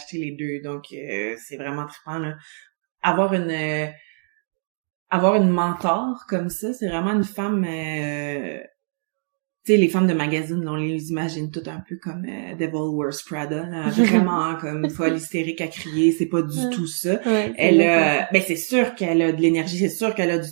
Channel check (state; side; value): silent; left; digital silence